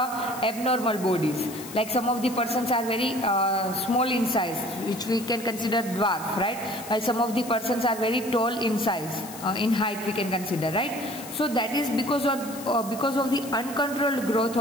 bodies, like some of the persons are very small in size, which we can consider dwarf, right? While some of the persons are very tall in size, in height we can consider, right? So that is because of the uncontrolled growth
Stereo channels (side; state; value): left; noise; hiss, 14 dB below the sound